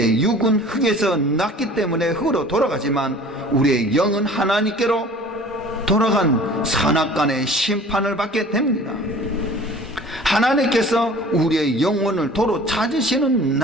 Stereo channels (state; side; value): normal; both; correlation 0.46